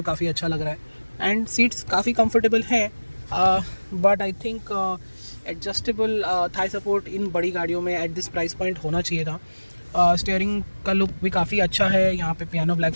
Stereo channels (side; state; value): both; inverted; correlation -1.00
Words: काफ़ी अच्छा लग रहा है, एंड सीट्स काफ़ी कंफर्टेबल हैं, but I think adjustable Thai support in बड़ी गाड़ियों में एट दिस प्राइस पॉइंट होना चाहिए था। स्टीयरिंग का लुक भी काफ़ी अच्छा है, यहाँ पे पियानो ब्लैक